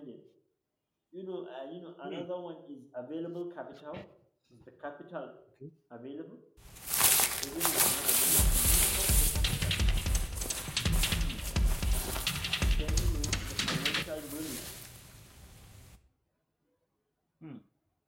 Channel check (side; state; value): both; identical; correlation 1.00